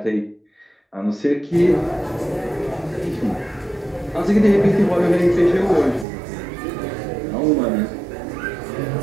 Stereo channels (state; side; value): drops out; left; at 6.1 s